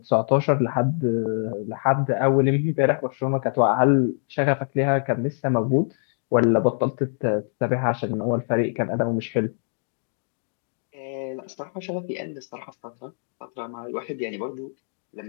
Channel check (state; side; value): silent; right; digital silence